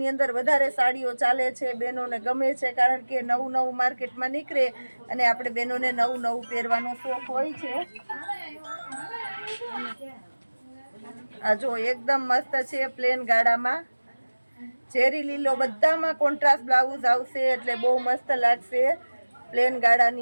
અંદર વધારે સાડીઓ ચાલે છે. બહેનોને ગમે છે, કારણ કે નવું માર્કેટમાં નીકળે અને આપણે બહેનોને નવું પહેરવાનો શોખ હોય છે. આ જો એકદમ મસ્ત છે. પ્લેન ગાળામાં ચેરી લીલો, બધામાં કોન્ટ્રાસ્ટ બ્લાઉઝ આવશે એટલે બહુ મસ્ત લાગશે. પ્લેન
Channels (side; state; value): both; inverted; correlation -1.00